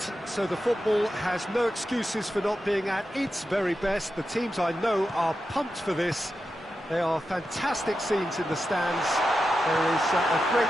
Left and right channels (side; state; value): both; normal; correlation 0.90